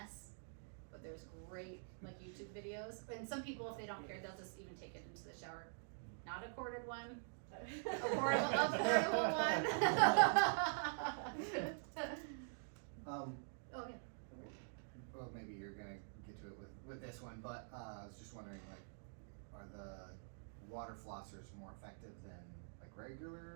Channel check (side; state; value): left; silent; digital silence